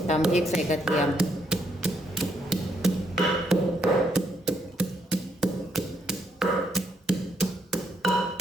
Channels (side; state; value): both; normal; correlation 0.75